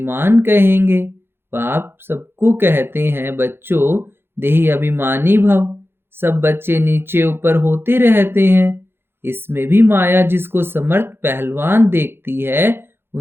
कहेंगे। बाप सबको कहते हैं, बच्चों देही अभिमानी भव। सब बच्चे नीचे ऊपर होते रहते हैं। इसमें भी माया जिसको समर्थ पहलवान देखती है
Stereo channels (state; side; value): late; left; 0.11 ms